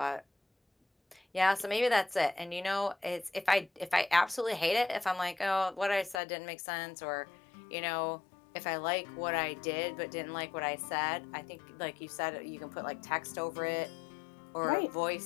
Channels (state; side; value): drops out; right; at 6.2 s